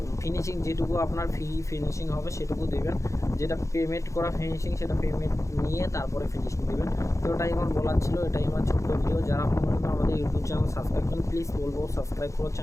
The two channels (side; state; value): right; late; 0.15 ms